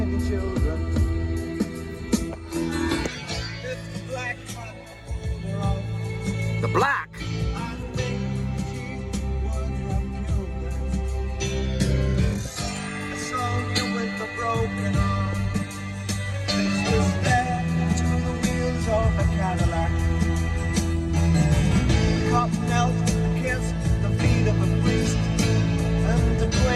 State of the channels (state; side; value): identical; both; correlation 1.00